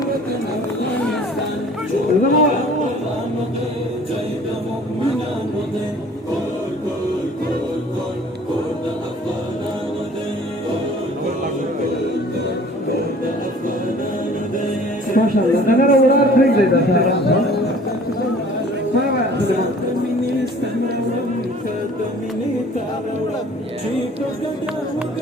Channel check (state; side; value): normal; both; correlation 0.50